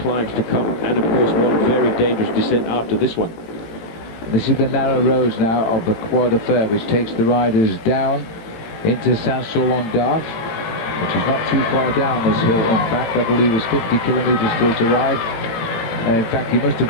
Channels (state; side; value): late; right; 18 ms